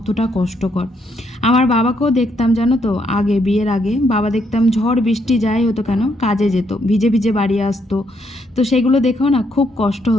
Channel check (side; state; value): both; normal; correlation 0.74